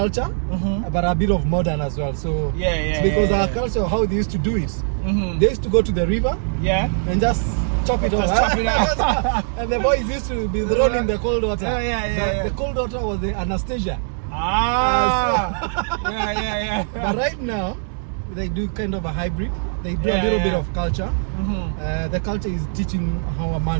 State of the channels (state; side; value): silent; left; digital silence